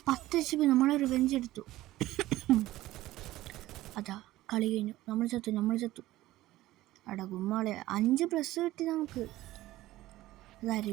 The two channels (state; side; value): quieter; left; 16.3 dB